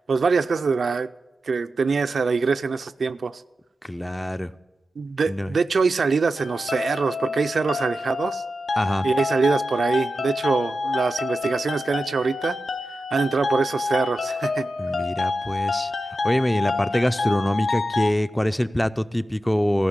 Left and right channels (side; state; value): both; normal; correlation 0.92